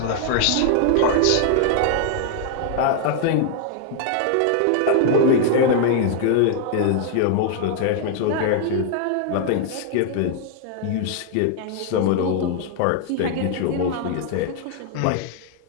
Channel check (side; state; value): both; different; correlation 0.00